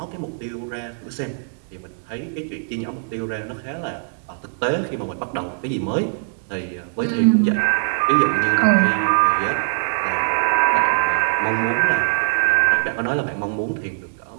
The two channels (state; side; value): silent; left; digital silence